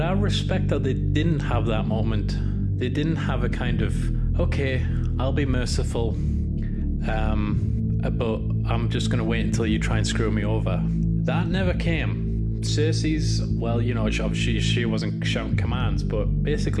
I respect that they didn't have that moment. They didn't have a kind of, okay, I'll be merciful, but I'm just going to wait until you try and screw me over. That never came. Cersei's, well, you know, obviously she wasn't shouting commands, but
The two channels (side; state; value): both; identical; correlation 1.00